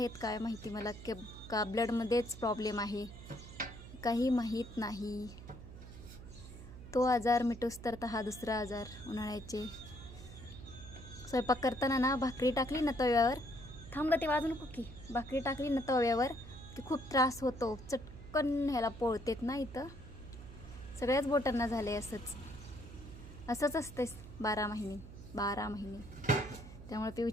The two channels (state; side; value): noise; right; hum, 14 dB below the sound